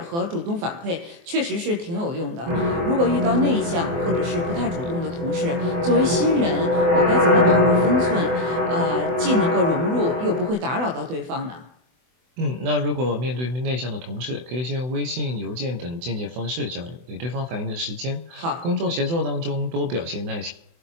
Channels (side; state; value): left; late; 24 ms